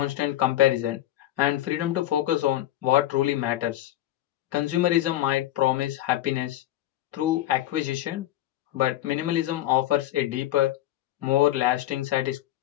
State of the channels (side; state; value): right; quieter; 14.0 dB